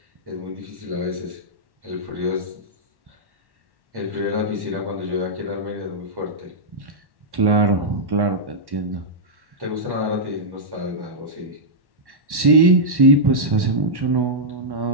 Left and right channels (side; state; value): left; late; 1.1 ms